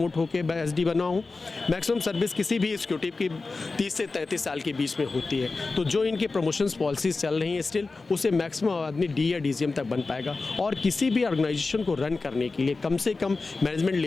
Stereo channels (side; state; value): right; quieter; 3.8 dB